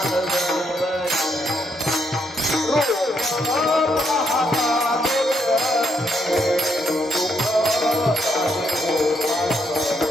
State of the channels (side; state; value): both; normal; correlation 0.76